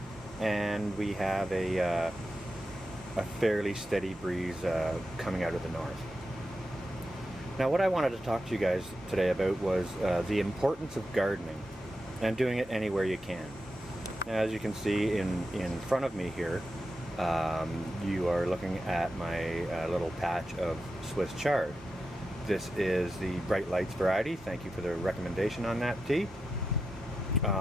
and we have a fairly steady breeze coming out of the north. Now, what I wanted to talk to you guys today about was the importance of gardening and doing it anywhere you can. Now, as you can see in front of me here, you are looking at my little patch of Swiss chard. This is the Bright Lights variety. Thank you for the recommendation on that tea.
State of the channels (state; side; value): normal; both; correlation 0.89